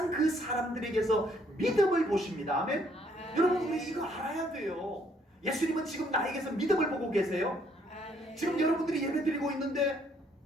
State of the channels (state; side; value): normal; both; correlation 0.67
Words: 그 사람들에게서 믿음을 보십니다. 아멘. 여러분 우리 이거 알아야 돼요. 예수님은 지금 나에게서 믿음을 보고 계세요. 아멘. 지금 여러분들이 예배 드리고 있는데